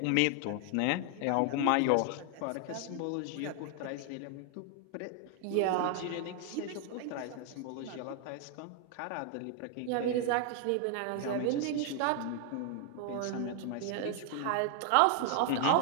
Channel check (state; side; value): different; both; correlation 0.00